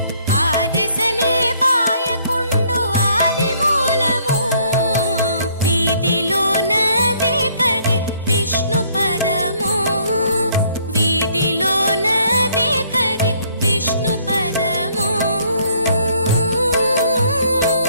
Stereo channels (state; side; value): inverted; both; correlation -0.64